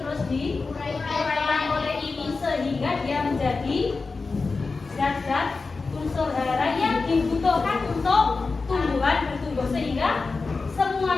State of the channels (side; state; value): right; quieter; 4.1 dB